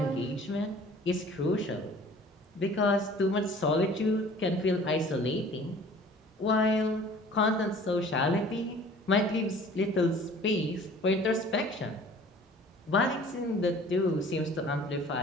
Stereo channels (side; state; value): both; normal; correlation 0.49